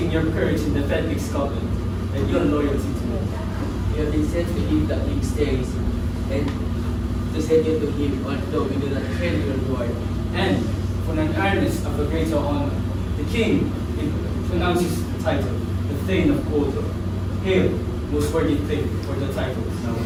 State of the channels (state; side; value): identical; both; correlation 1.00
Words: your courage in defending Scotland and your loyalty to me. We have been sent to him that king stays, and to send you to him, although we do not claim your reward. And for an earnest of a greater honor, the king pronounces the title, the Thane of Cawdor. Hail, most worthy thing for the title now